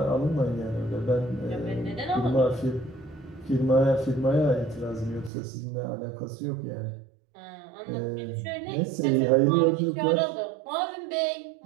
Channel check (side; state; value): left; drops out; at 5.3 s